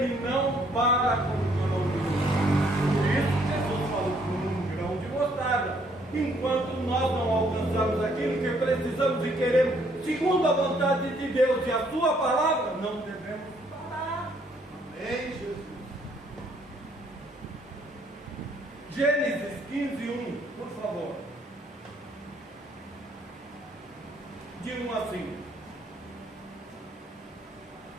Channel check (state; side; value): normal; both; correlation 0.67